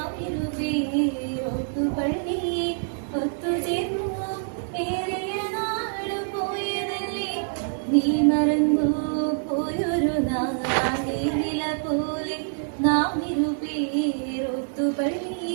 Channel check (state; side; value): silent; left; digital silence